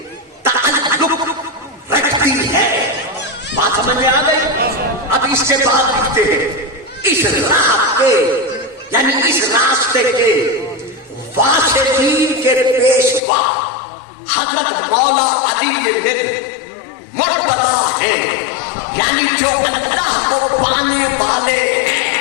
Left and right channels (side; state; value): right; drops out; at 13.2 s